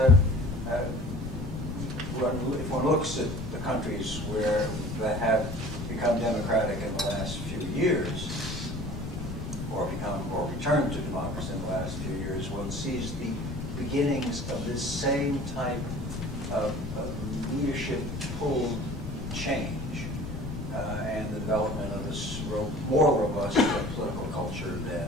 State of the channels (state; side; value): noise; left; rumble, 8 dB below the sound